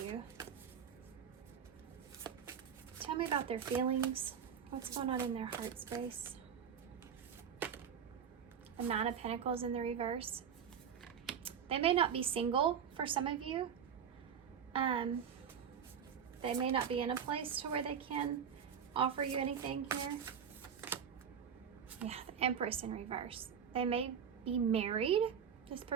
Tell me about their feelings. What's going on in their heart space? The 9 of Pentacles in the reverse. They may not be single for some of you. They may not be in a place to where they can offer you anything here. Yeah, the Empress in reverse. They may be married. This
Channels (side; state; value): left; quieter; 7.7 dB